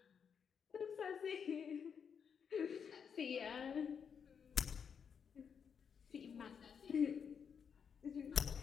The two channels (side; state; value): right; quieter; 6.9 dB